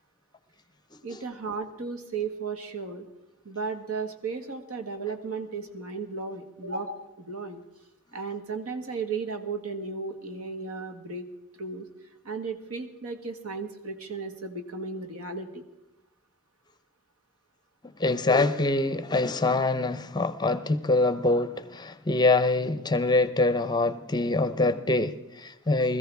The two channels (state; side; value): normal; both; correlation 0.33